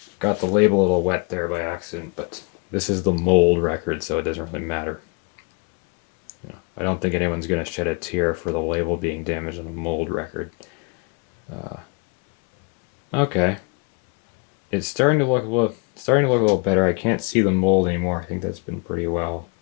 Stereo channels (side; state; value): right; quieter; 33.8 dB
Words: label a little wet there by accident, but this is the mold record, so it doesn't really matter. I don't think anyone's going to shed a tear for the label being damaged on a mold record. Okay. It's starting to look a little better. I can't see the mold anymore. I think that's been pretty well